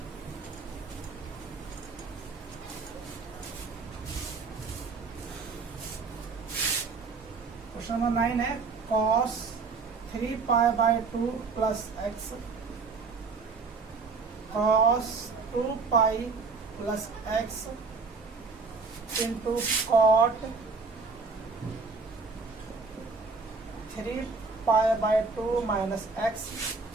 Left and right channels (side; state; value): left; quieter; 4.5 dB